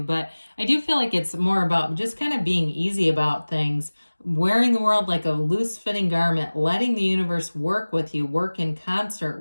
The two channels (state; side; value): inverted; both; correlation -1.00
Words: I do feel like it's more about just kind of being easy about things. Wearing the world like a loose-fitting garment. Letting the universe work with you. Work in concert